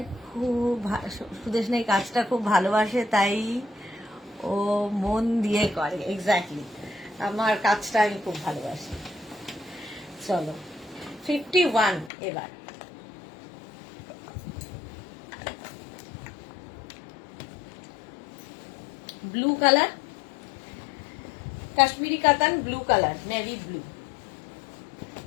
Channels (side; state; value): right; drops out; at 12.1 s